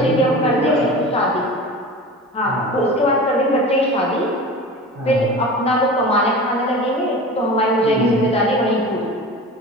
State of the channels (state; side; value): normal; both; correlation 0.34